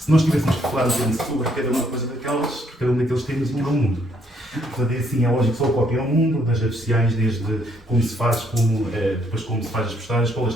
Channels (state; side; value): normal; both; correlation 0.69